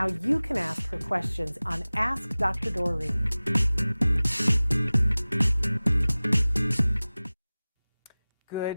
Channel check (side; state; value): both; inverted; correlation -0.99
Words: you can ask her questions on Ask Dr. Doreen.